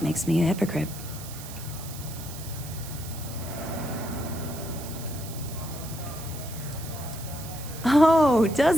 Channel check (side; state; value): right; noise; hiss, 13 dB below the sound